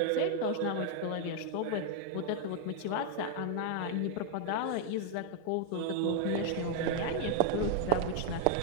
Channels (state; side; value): different; both; correlation 0.00